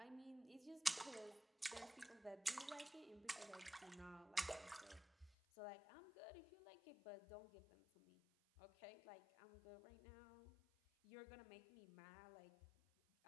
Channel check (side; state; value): right; drops out; at 5.4 s